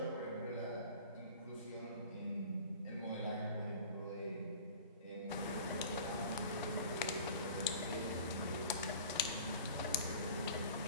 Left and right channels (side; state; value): both; inverted; correlation -0.42